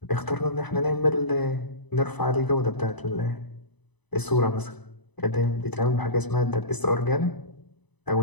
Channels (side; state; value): right; late; 1.0 ms